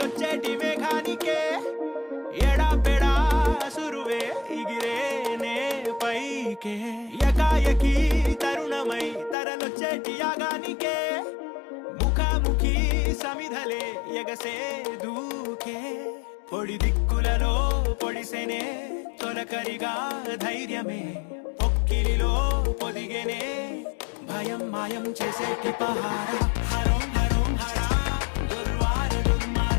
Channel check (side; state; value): right; drops out; at 9.3 s